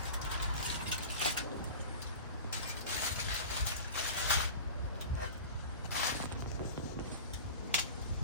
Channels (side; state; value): both; inverted; correlation -0.35